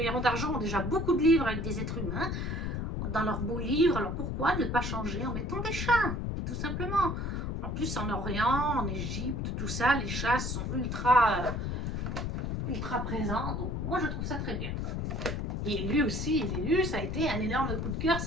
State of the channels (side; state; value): left; noise; rumble, 2 dB below the sound